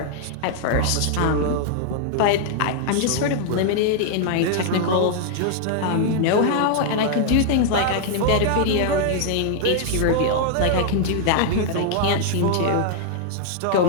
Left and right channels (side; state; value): both; different; correlation 0.00